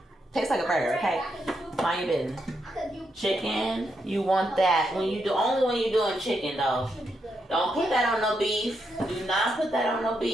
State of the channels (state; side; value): normal; both; correlation 0.81